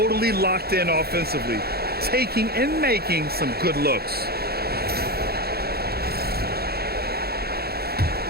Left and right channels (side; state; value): left; late; 0.46 ms